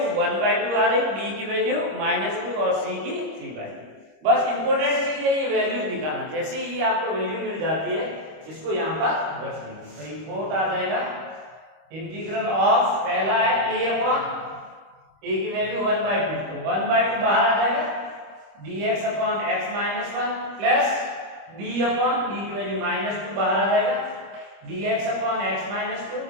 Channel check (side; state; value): left; late; 26 ms